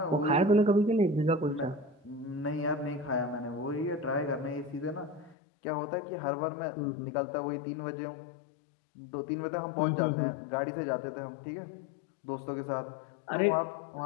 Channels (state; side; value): drops out; right; at 5.4 s